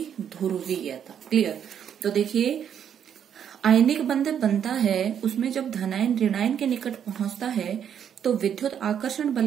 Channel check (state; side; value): quieter; left; 8.7 dB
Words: ध्रुवीयता। क्लियर। तो देखिए, आयनिक बंध बनता है, उसमें जब धनायन ऋणायन के निकट पहुंचता है तो विद्युत आकर्षण